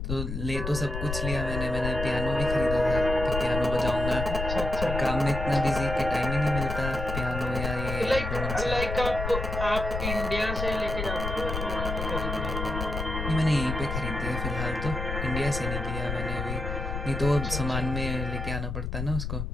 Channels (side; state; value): left; noise; rumble, 4 dB below the sound